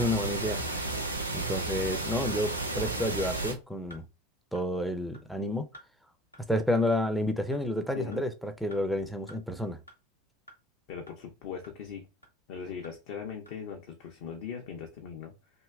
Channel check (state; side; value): normal; both; correlation 0.43